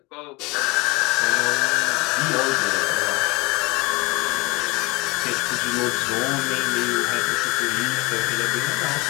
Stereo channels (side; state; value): right; quieter; 25.3 dB